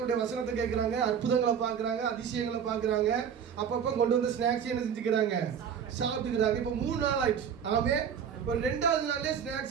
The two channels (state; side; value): quieter; left; 7.7 dB